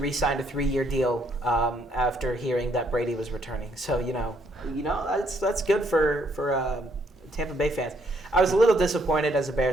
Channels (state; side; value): normal; both; correlation 0.70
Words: a 3-year deal after hearing that Brady was returning. So that's good for Tampa Bay fans. I was a little disappointed as a